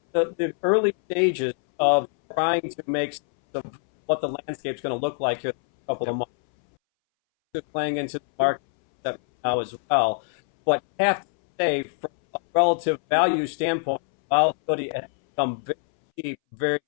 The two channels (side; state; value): right; silent; 62 dB below the other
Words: early stages of trying to make sense of what the landscape's going to look like here in a couple of months. Just playing into the market now as well. But I have to say, from a relative value standpoint, volatility has become very cheap very